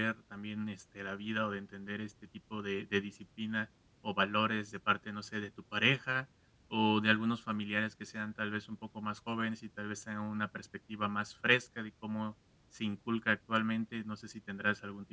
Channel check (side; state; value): both; identical; correlation 1.00